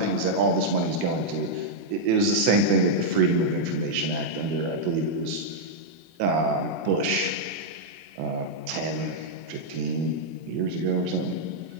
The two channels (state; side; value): late; left; 24 ms